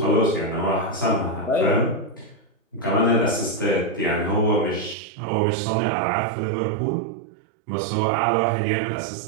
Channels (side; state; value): left; drops out; at 5.0 s